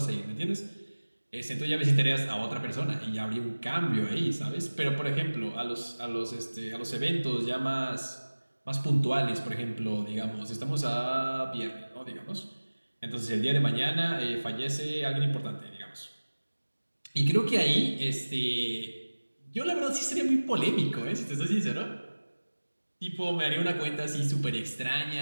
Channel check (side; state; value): both; inverted; correlation -1.00